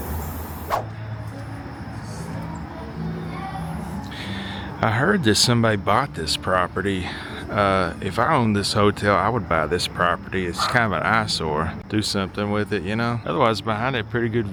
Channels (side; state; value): both; identical; correlation 1.00